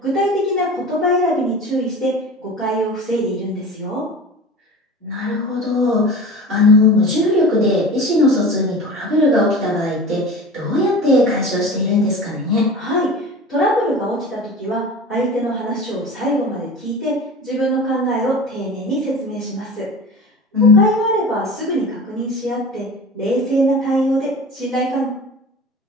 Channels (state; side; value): normal; both; correlation 0.35